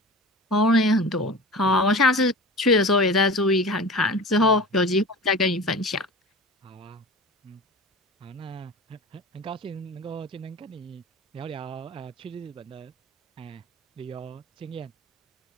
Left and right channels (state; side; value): normal; both; correlation 0.35